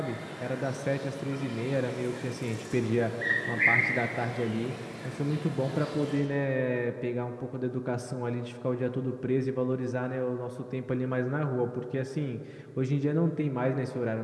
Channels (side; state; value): both; identical; correlation 1.00